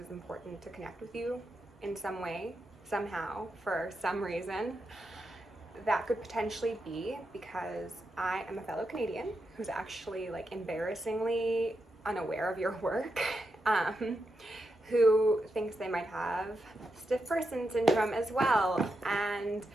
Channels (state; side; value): normal; both; correlation 0.86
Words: important to connect with you in some way, somehow, for some reason. That could potentially be because I am a fellow Canadian who's actually like embarrassingly unaware of your work, who thinks they might have stiff person syndrome as well. And